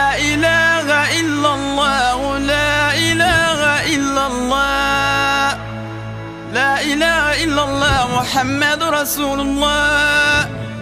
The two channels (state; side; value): identical; both; correlation 1.00